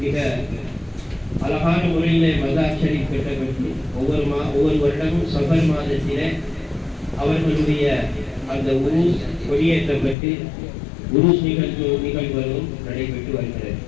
மிக அழகான முறையிலே மதார் ஷரீப் கட்டப்பட்டு ஒவ்வொரு வருடமும் சஃபர் மாதத்திலே அவர்களுடைய அந்த உருஸ் கொடியேற்றப்பட்டு உருஸ் நிகழ்வுகளும் நடைபெற்று வருகிறது.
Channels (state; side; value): drops out; right; at 10.2 s